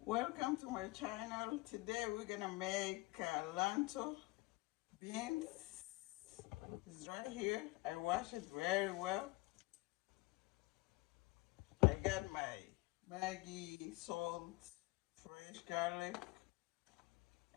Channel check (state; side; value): quieter; right; 22.0 dB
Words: Welcome to my channel. Today we're gonna make lentil beans. It's right here. I wash it very well. I got my Maggi, salt, fresh garlic,